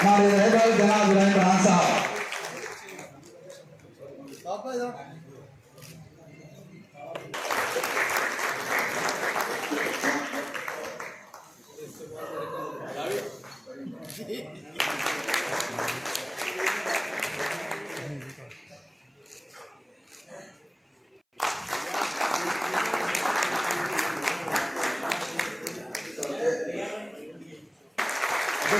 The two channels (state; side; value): identical; both; correlation 1.00